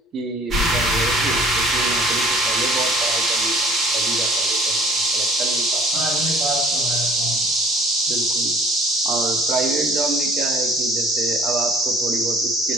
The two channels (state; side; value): normal; both; correlation 0.53